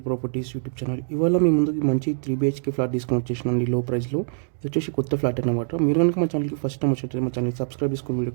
properties YouTube channel. ఇవాళ మీ ముందుకి మంచి 3 BHK ఫ్లాట్ తీసుకొని వచ్చేసినండి లో ప్రైస్లో. ఇది వచ్చేసి కొత్త ఫ్లాట్ అనమాట. మీరు కనుక మా ఛానల్కి ఫస్ట్ టైం వచ్చేటప్పుడు మా ఛానల్ సబ్స్క్రైబ్ చేసుకుని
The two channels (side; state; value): left; silent; digital silence